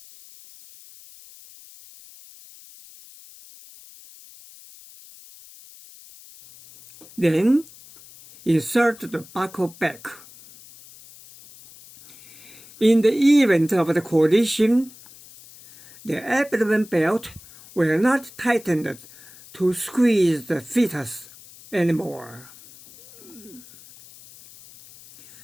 Then insert the buckle back. In the event of the collision, the abdomen belt will not tighten to squeeze the fetus anymore.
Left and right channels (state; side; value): noise; left; hiss, 21 dB below the sound